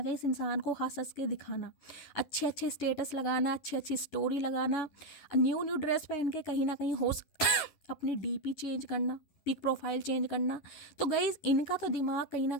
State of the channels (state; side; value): late; right; 11 ms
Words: कहीं इस इंसान को हंस हंस के दिखाना, अच्छे अच्छे स्टेटस लगाना, अच्छी अच्छी स्टोरी लगाना, न्यू न्यू ड्रेस पहन के कहीं ना कहीं अपनी डीपी चेंज करना, पिक प्रोफाइल चेंज करना। तो गाइज इनका तो दिमाग कहीं ना